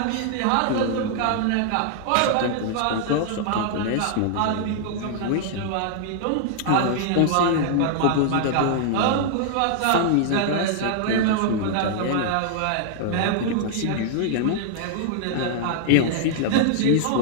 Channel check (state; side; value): different; both; correlation -0.01